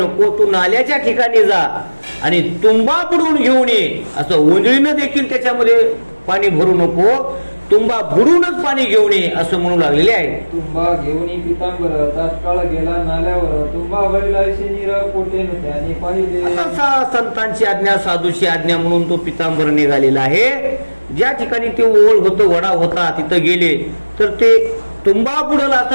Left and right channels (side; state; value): both; inverted; correlation -1.00